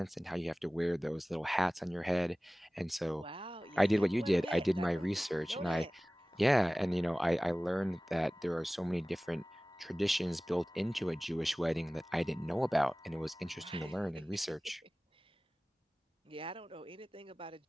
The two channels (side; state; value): both; normal; correlation 0.98